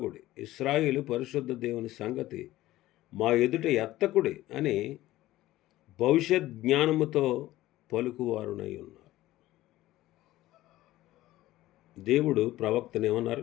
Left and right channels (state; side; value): quieter; right; 16.0 dB